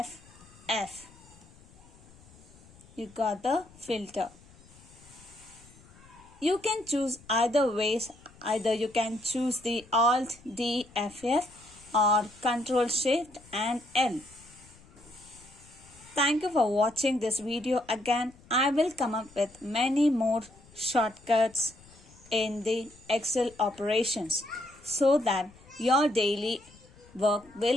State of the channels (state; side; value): noise; left; rumble, 25 dB below the sound